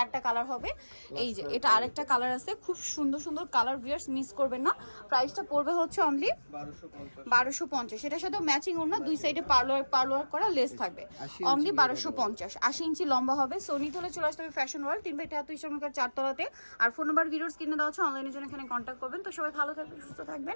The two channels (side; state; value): both; inverted; correlation -1.00